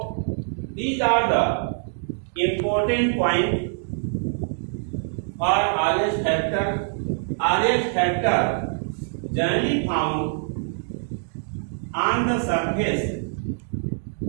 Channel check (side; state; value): left; silent; digital silence